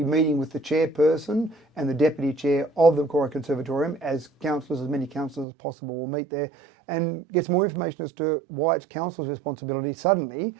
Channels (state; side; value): drops out; left; at 5.5 s